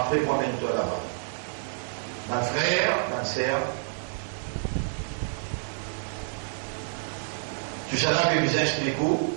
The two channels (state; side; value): silent; left; 59 dB below the other